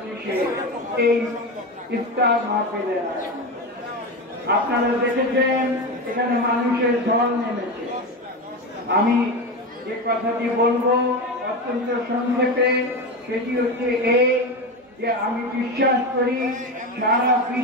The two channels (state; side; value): normal; both; correlation 0.19